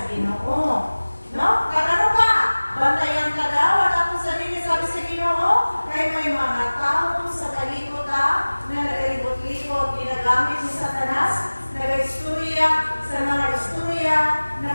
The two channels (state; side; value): inverted; both; correlation -1.00